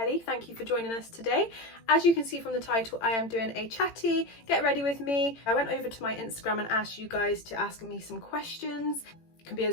Thank you for joining us today. As you can see from the title, I am doing a chatty, get ready with me. I went over to my Instagram and asked you guys to ask me some questions. It can be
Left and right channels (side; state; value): right; late; 18 ms